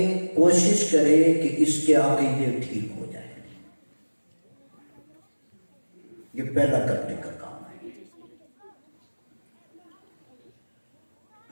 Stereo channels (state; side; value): inverted; both; correlation -1.00